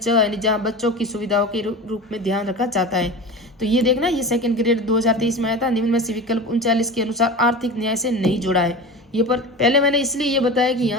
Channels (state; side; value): normal; both; correlation 0.30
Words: यानी जहाँ बच्चों की सुविधाओं के रूप में ध्यान रखा जाता है। तो ये देखना, ये सेकंड ग्रेड 2023 में आया था। निम्न में से विकल्प 39 के अनुसार आर्थिक न्याय से नहीं जुड़ा है। ये पर पहले मैंने इसलिए ये बताया कि